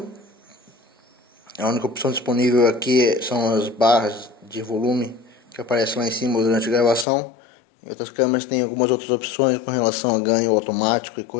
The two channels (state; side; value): drops out; right; at 7.1 s